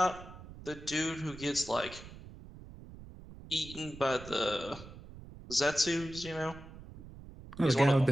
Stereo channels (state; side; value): noise; right; rumble, 16 dB below the sound